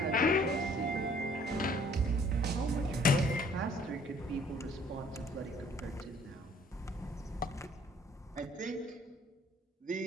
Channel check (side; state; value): both; normal; correlation 0.58